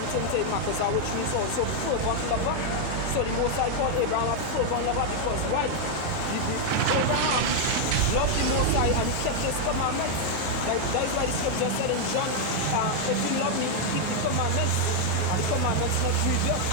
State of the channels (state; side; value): different; both; correlation 0.00